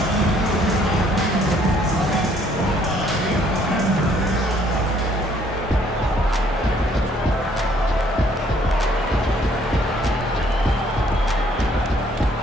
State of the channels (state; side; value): normal; both; correlation 0.64